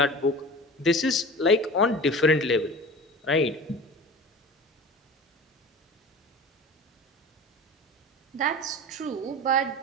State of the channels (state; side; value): normal; both; correlation 0.36